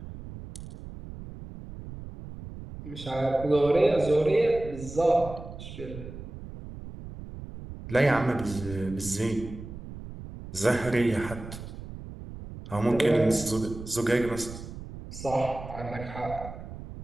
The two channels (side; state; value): right; noise; rumble, 12 dB below the sound